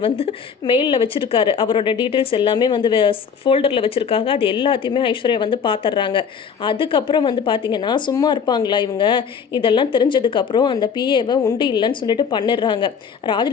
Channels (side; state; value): right; quieter; 6.7 dB